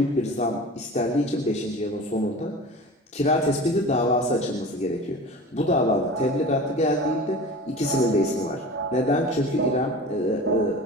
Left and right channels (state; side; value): normal; both; correlation 0.36